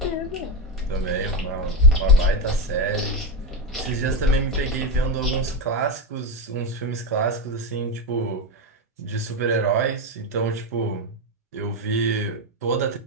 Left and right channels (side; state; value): both; normal; correlation 0.10